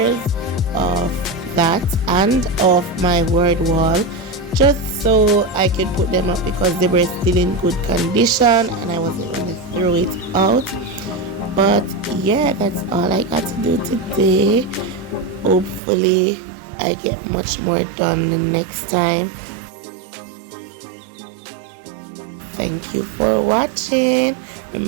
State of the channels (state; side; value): drops out; left; at 15.8 s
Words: of that and of my word wall, just so I could put them up because they were still in good condition and I wasn't going to throw it out. But yeah, that's all I got to do today. Hopefully I get much more done the next time. Thank you for watching.